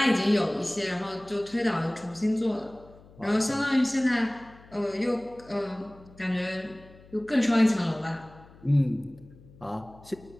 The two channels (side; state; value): left; noise; hum, 23 dB below the sound